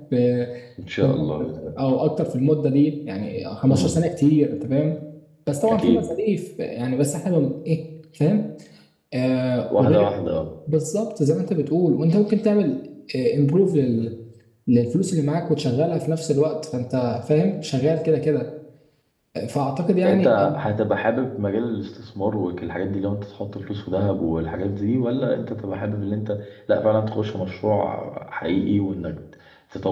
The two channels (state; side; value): identical; both; correlation 1.00